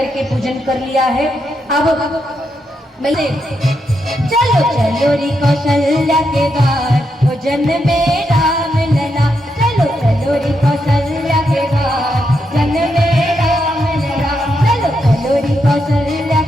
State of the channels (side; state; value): both; normal; correlation 0.82